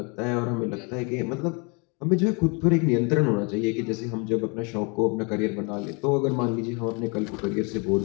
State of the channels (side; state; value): right; quieter; 31.7 dB